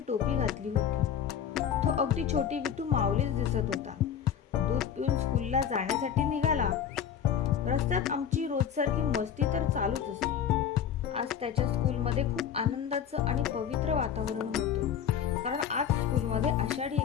टोपी घातली होती। तो अगदी छोटी विटू माऊलीच दिसत होता। दूध पिऊन स्कूलला जाण्यासाठी निघाला। रस्त्यात आमची रोजसारखी मस्ती तर चालूच असते। आज त्याच्या स्कूलमध्ये खूप आनंदाचं आणि पवित्र वातावरण होतं, कारण आज स्कूलमध्ये आषाढी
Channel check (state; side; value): quieter; right; 8.6 dB